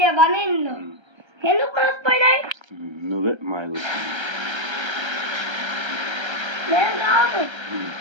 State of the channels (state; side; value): late; left; 1.3 ms